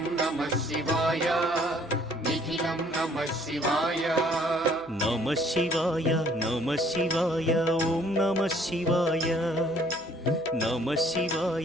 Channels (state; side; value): noise; right; hum, 28 dB below the sound